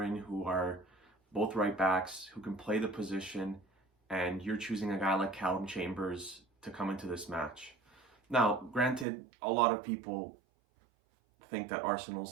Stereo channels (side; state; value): left; drops out; at 9.1 s